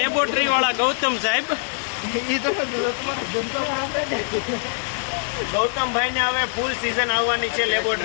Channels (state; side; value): silent; right; digital silence